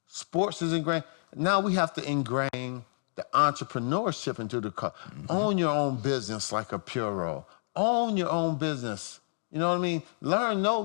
Sports is ingrained. Now we have to ingrain the entrepreneurship into the culture. Mm-hmm. Own your own business like a Puro. Own your own business. You know what I mean? Learn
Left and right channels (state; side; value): silent; right; digital silence